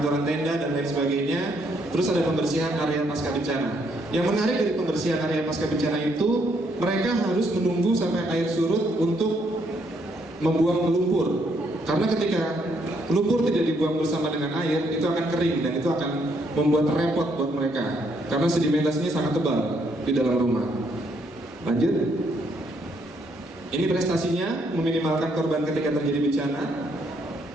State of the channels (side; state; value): both; normal; correlation 0.72